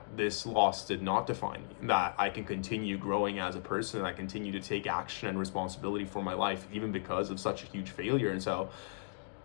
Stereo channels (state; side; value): silent; right; digital silence